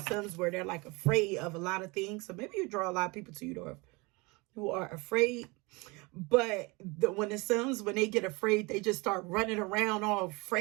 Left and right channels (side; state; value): left; quieter; 26.2 dB